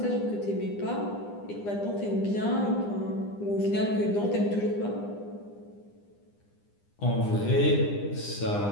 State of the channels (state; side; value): late; right; 9.9 ms